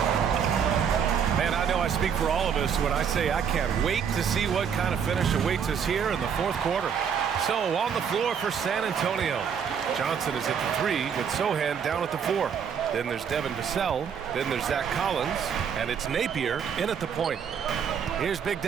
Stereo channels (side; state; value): left; quieter; 7.4 dB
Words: Man, I know I speak for all of us when I say I can't wait to see what kind of finish awaits us here in the fourth quarter. So, on the floor for San Antonio. Johnson is at the 3 with Sohan down at the 4. Then there's Devin Vassell. Then there's Zach Collins. And it's Napier in at the point. Here's Big